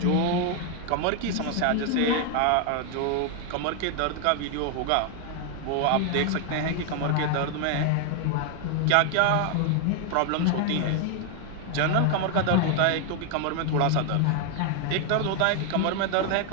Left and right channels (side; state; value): both; different; correlation 0.00